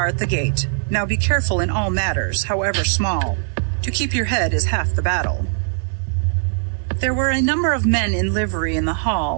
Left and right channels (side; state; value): left; silent; digital silence